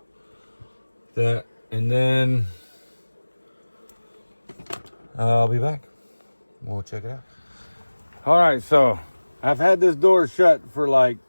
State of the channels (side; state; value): both; inverted; correlation -1.00